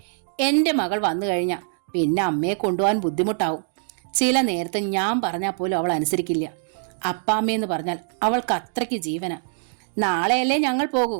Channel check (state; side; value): silent; left; digital silence